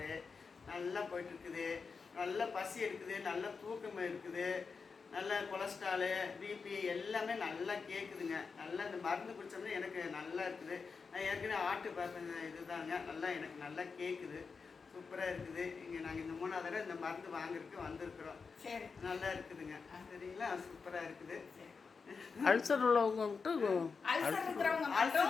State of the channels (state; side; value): quieter; right; 5.1 dB